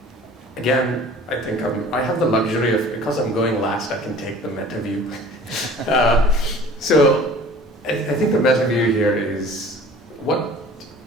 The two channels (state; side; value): normal; both; correlation 0.46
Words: again, I think I have the luxury of, because I'm going last, I can take the meta view. So I think the meta view here is what